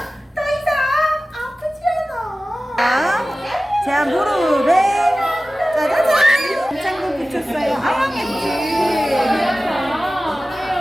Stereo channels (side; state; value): both; normal; correlation 0.96